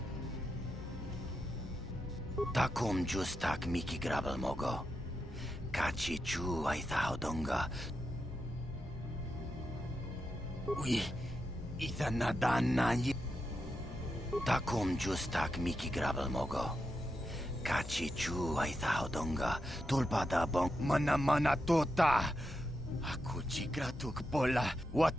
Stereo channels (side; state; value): both; normal; correlation 0.86